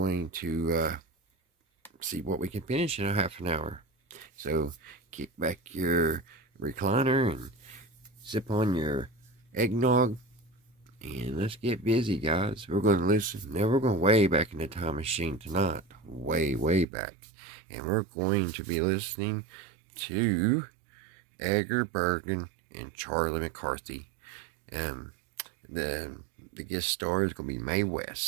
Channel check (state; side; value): drops out; left; at 16.9 s